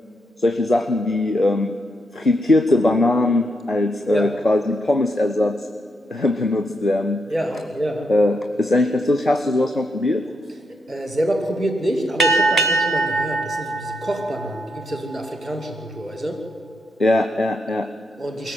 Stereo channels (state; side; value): normal; both; correlation 0.80